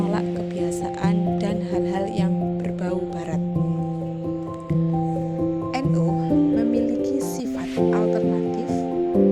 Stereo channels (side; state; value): both; identical; correlation 1.00